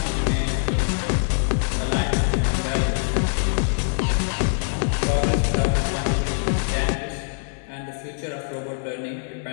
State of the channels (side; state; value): right; silent; digital silence